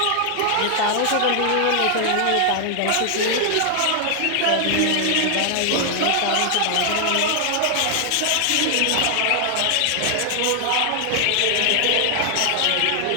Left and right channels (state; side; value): different; both; correlation 0.00